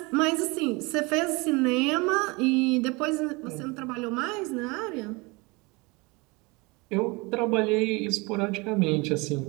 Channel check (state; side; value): quieter; left; 26.2 dB